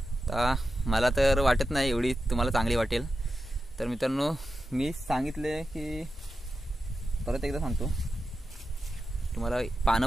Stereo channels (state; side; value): normal; both; correlation 0.90